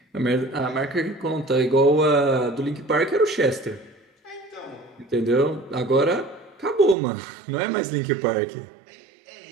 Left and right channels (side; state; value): left; drops out; at 7.0 s